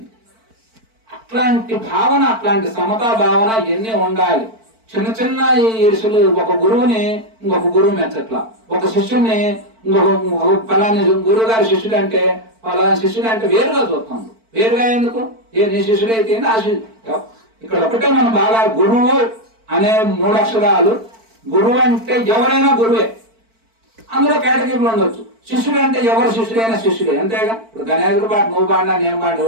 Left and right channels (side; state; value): left; late; 4.5 ms